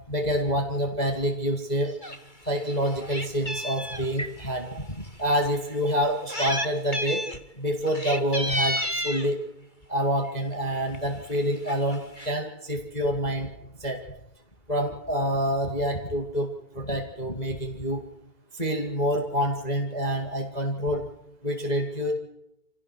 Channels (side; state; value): right; late; 2.3 ms